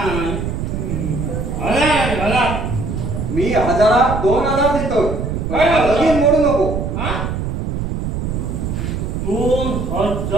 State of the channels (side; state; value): right; noise; rumble, 3 dB below the sound